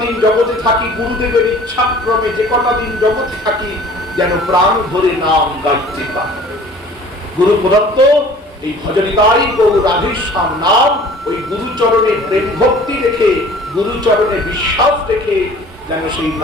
দিন জগতে থাকি গুরুদেবের ইচ্ছাক্রমে, যে কটা দিন জগতে থাকি যেন প্রাণ ধরে নাম গাইতে পারি। গুরু প্রদত্ত এই ভজনিতাই গৌর রাধেশ্যাম নাম, ওই গুরুচরণে প্রেম ভক্তি রেখে, গুরুচরণে বিশ্বাস রেখে যেন সেই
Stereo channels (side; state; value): both; normal; correlation 0.48